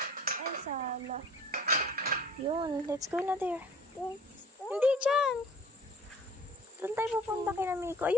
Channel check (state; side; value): normal; both; correlation 0.49